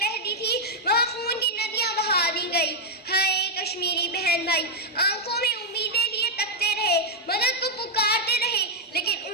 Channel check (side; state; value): both; normal; correlation 0.00